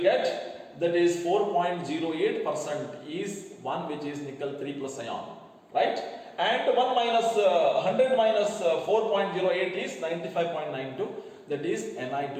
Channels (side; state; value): both; identical; correlation 1.00